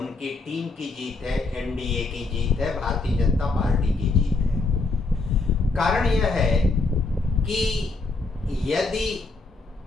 टीम की जीत है, एनडीए की जीत है, भारतीय जनता पार्टी की जीत है। कारण यह है कि यदि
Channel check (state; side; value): quieter; right; 3.7 dB